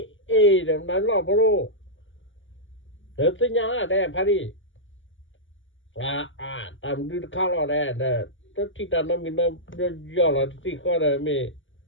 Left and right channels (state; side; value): late; right; 0.56 ms